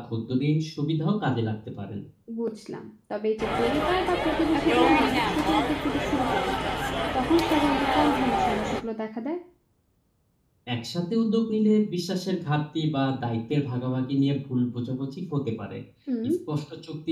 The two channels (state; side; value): identical; both; correlation 1.00